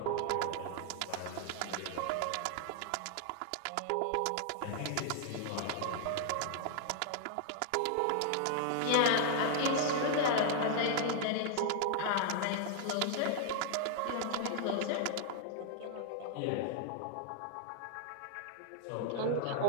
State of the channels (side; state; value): both; different; correlation -0.01